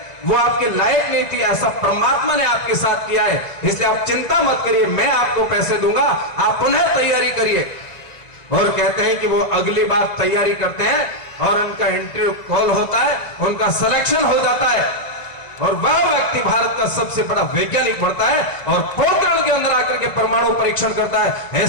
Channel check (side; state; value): right; late; 1.8 ms